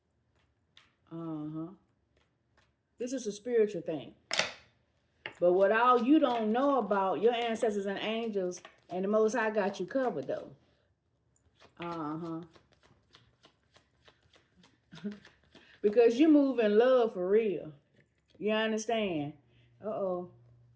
This is a spiritual thing. But what all you don't know about, your ancestors and angels and the Most High got you covered though. Because you move in love for real. You understand? Uh-oh.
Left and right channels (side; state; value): both; identical; correlation 1.00